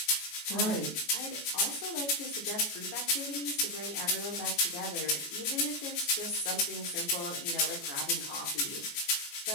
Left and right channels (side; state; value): right; late; 14 ms